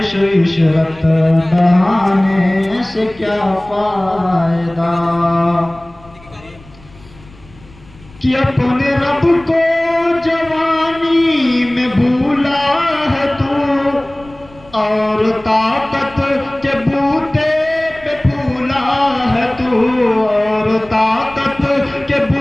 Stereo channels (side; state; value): left; noise; rumble, 24 dB below the sound